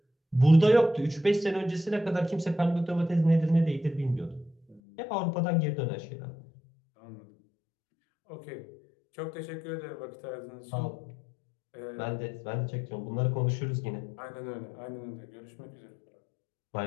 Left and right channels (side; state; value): right; drops out; at 4.8 s